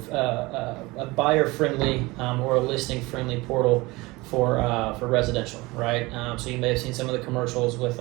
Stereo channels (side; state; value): left; quieter; 22.4 dB